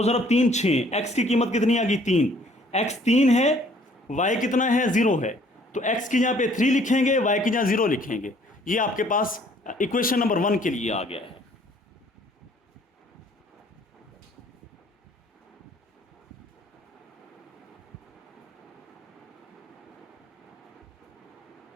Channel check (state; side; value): normal; both; correlation 0.59